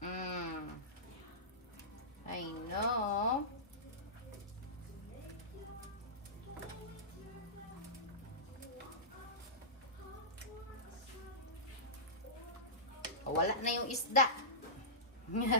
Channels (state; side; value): normal; both; correlation -0.18